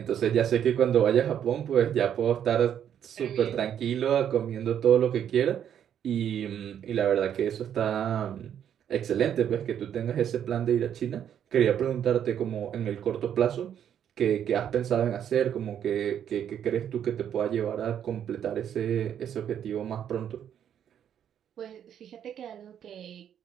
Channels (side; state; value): left; quieter; 9.4 dB